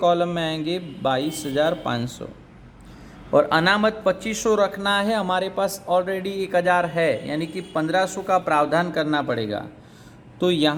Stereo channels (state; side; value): identical; both; correlation 1.00